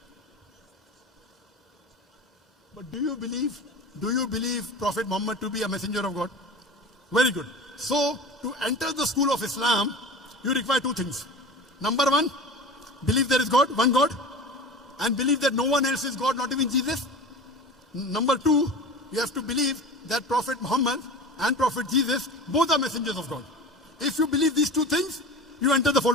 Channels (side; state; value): both; normal; correlation 0.33